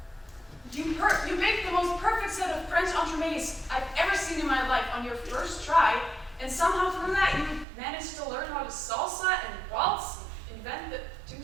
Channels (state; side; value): drops out; left; at 7.7 s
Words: You baked the most perfect set of French entremets I've ever seen in my life on your first try, and somehow through that you managed to learn how to salsa and waltz, invent the